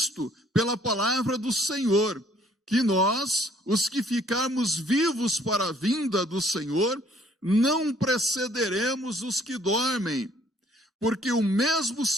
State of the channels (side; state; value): both; normal; correlation 0.62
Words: pela palavra do Senhor, que nós, os que ficarmos vivos para a vinda do Senhor, não precederemos os que dormem, porque o mesmo